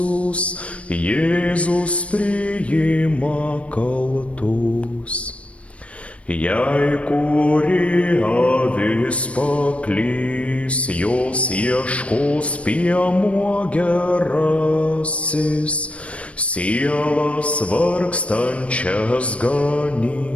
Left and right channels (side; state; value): right; late; 0.063 ms